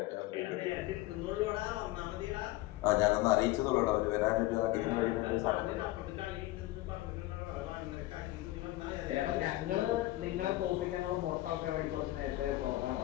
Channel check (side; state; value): right; quieter; 17.6 dB